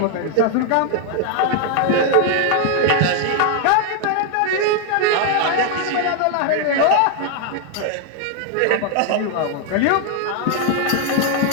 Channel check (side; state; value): both; different; correlation 0.00